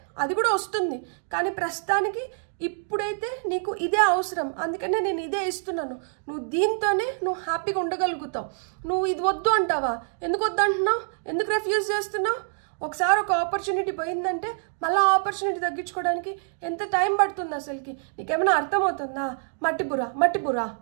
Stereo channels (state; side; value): silent; left; digital silence